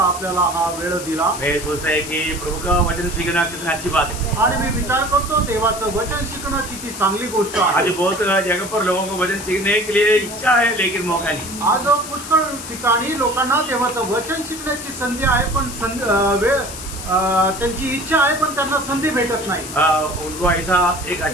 आपल्याला हा वेळ दिला। मैं सोचता है कि प्रभु का वचन सीखना कितनी अच्छी बात है आणि मी विचार करतो देवाचं वचन शिकणं किती चांगली गोष्ट आहे। आज बहुत जगह पर लोगों को वचन सीखने के लिए इच्छा है लेकिन मौका नहीं। आज पुष्कळ ठिकाणी लोकांना देवाचं वचन शिकण्याची संधी आहे पण त्यांची इच्छा आहे पण त्यांना संधी भेटत नाही। उनको ऐसा एक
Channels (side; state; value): left; noise; hiss, 10 dB below the sound